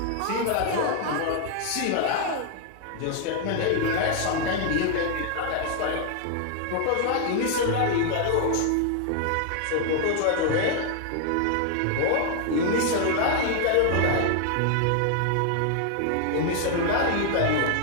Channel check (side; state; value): both; different; correlation 0.00